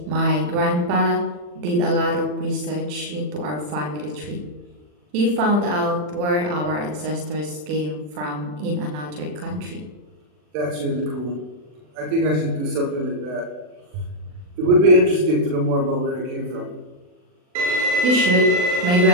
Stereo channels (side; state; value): left; late; 40 ms